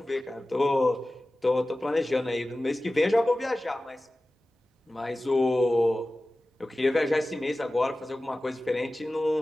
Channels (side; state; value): both; normal; correlation 0.96